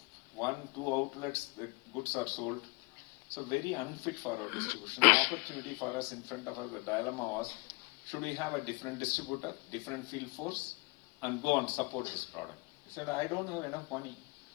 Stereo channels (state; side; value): quieter; right; 27.9 dB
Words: 1, 2 outlets, the goods are sold. So very unfit for our distribution. The opportunity for us in front of us, the dilemma was, should we have a different distributor, different field force, and go and support this product? He said, I don't have enough money.